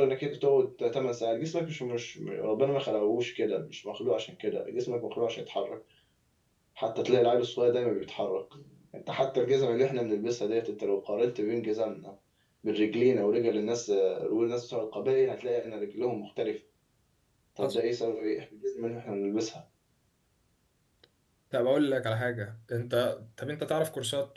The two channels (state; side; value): identical; both; correlation 1.00